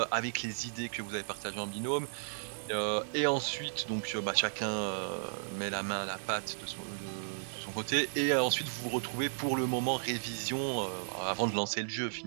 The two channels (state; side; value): silent; left; digital silence